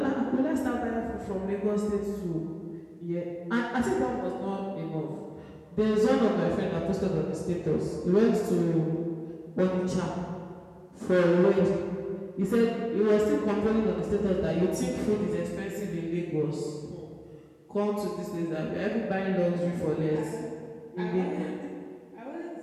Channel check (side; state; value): both; identical; correlation 1.00